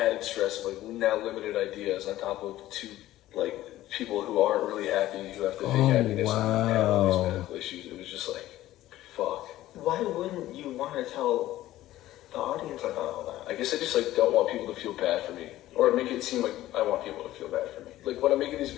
stress of like now limited ideas on top of 2 like people who aren't really happy, who have to fake happiness and have all these medical issues. It was just like, fuck. Why wouldn't you want to tell the audience about all that? I guess I just like don't want people to feel bad for me, or make it seem like I want people to feel bad for me. Like when I'm making these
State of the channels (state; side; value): quieter; right; 14.9 dB